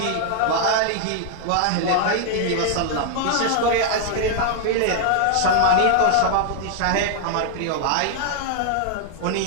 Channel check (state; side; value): different; both; correlation 0.00